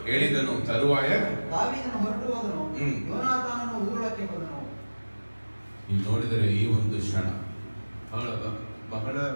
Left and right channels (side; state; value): both; inverted; correlation -1.00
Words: ಹೇಳಿದನು. ತರುವಾಯ ದಾವೀದನು ಹೊರಟು ಹೋದನು. ಯೋನಾತಾನನು ಊರೊಳಕ್ಕೆ ಬಂದನು. ನೀವು ನೋಡಿದರೆ ಈ ಒಂದು ಕ್ಷಣ ಬಹಳ